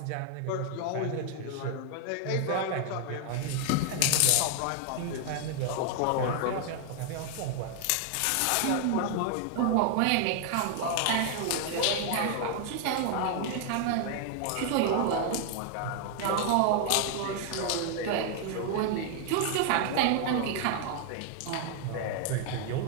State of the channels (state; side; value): different; both; correlation 0.00